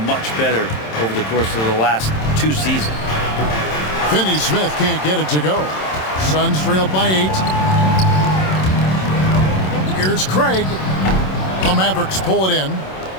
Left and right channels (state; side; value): late; right; 27 ms